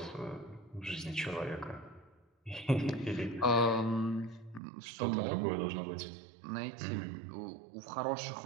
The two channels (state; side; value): drops out; left; at 4.6 s